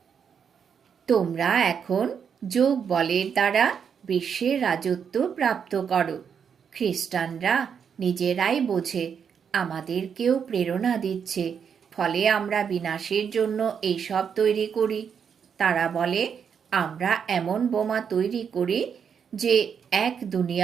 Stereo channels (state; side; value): quieter; left; 7.2 dB